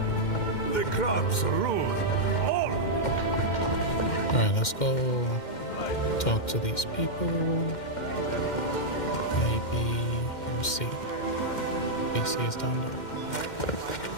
The crops rule. All. Alright, let's go talk to these people. Maybe, let's see. BC is down there.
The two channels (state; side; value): late; right; 2.1 ms